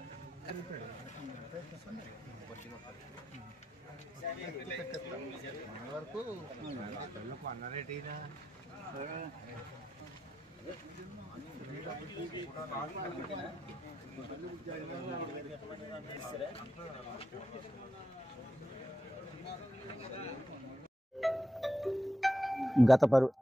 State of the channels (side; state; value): both; normal; correlation 0.86